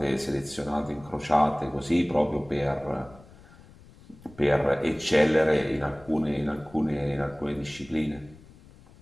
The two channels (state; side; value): noise; left; rumble, 23 dB below the sound